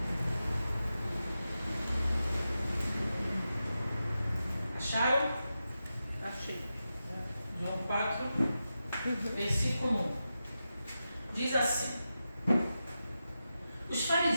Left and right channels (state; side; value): inverted; both; correlation -0.90